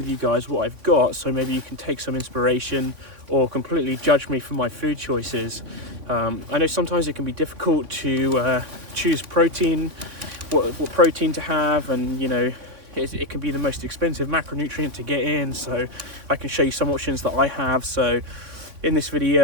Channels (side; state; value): left; late; 3.4 ms